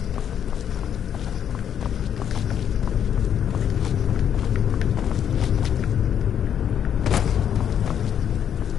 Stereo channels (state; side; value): quieter; right; 9.0 dB